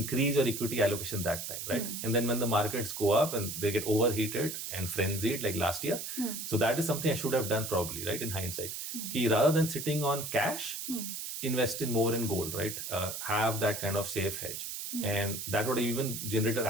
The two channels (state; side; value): noise; right; hiss, 6 dB below the sound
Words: your equity allocation that time, right? And then when the markets go up and they get overheated and frenzied like last year, so that is something I should have done probably, right? In hindsight, ki rather than sitting on cash, invest in more in gold, right? Have that kind of safe hedge. And that would even generate